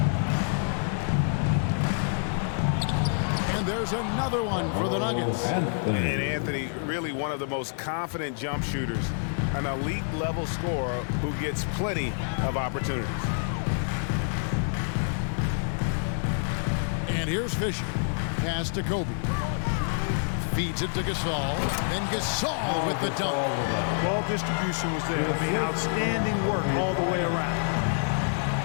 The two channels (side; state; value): right; silent; digital silence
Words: And there's another one for the Nuggets. And Anthony, really one of the most confident jump shooters, an elite level scorer who gets plenty of opportunities. And here's Fisher. Pass to Kobe. Feeds it to Gasol. Then Gasol with the dunk. Ball distribution was there. I mean, outstanding work all the way around.